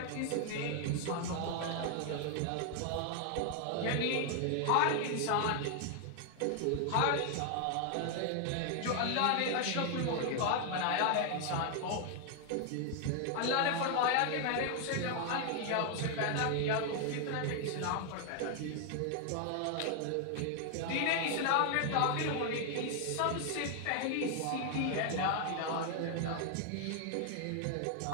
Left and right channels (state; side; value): different; both; correlation 0.00